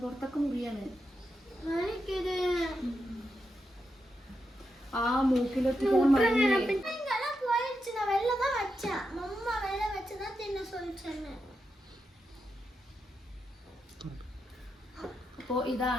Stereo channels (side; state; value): both; normal; correlation 0.86